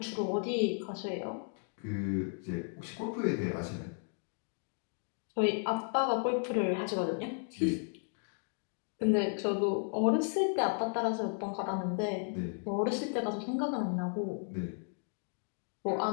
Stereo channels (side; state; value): right; silent; 55 dB below the other